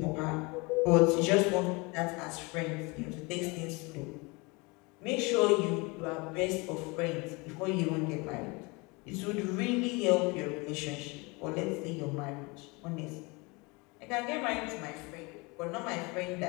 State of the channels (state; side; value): quieter; right; 27.0 dB